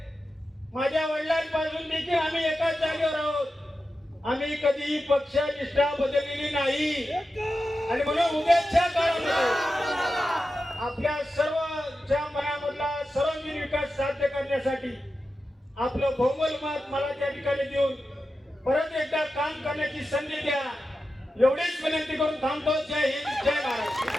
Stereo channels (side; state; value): both; normal; correlation 0.91